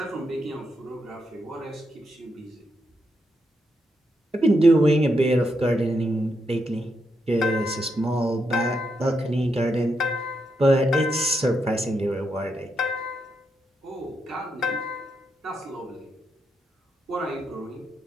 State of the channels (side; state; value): both; normal; correlation 0.82